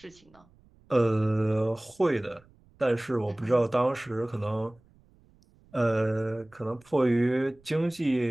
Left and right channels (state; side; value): noise; right; rumble, 30 dB below the sound